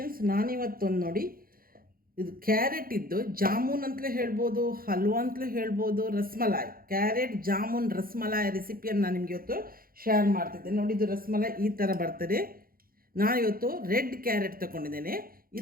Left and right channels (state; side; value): late; left; 0.42 ms